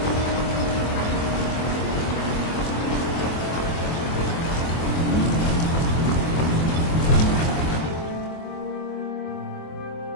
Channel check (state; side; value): late; right; 24 ms